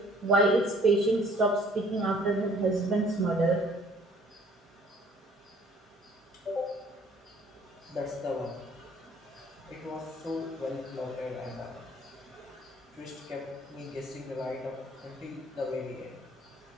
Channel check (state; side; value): normal; both; correlation 0.57